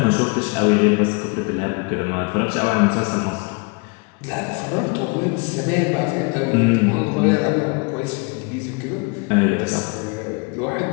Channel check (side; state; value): right; quieter; 30.9 dB